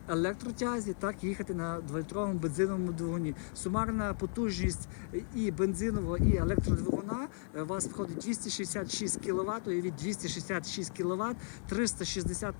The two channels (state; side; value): silent; right; 54 dB below the other